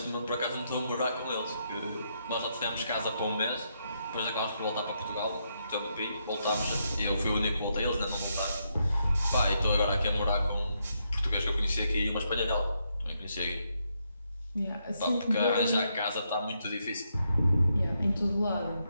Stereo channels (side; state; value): both; inverted; correlation -0.79